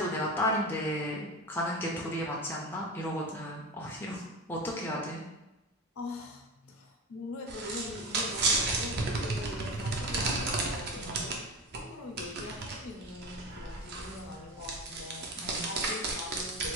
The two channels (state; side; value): normal; both; correlation 0.25